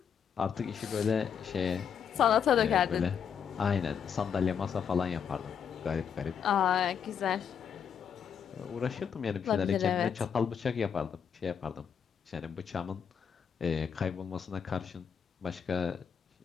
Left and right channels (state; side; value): quieter; right; 7.4 dB